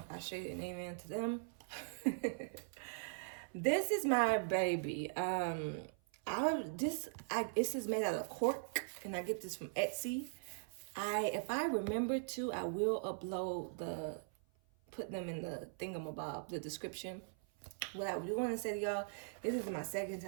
I say an amen to them. This is my baby. This is made out of cork, and I get this from Etsy. If I remember to, I will upload put them in the thingamabob, the description. What I do want to say to y'all, this is my second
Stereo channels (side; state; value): left; silent; 51 dB below the other